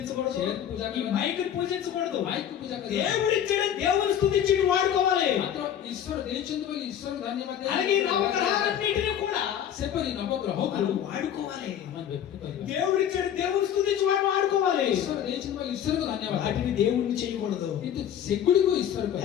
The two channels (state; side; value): quieter; right; 9.8 dB